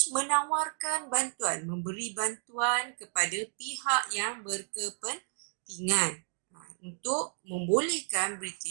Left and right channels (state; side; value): silent; left; 56 dB below the other